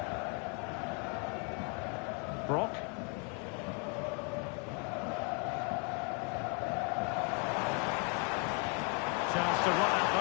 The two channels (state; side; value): quieter; right; 37.1 dB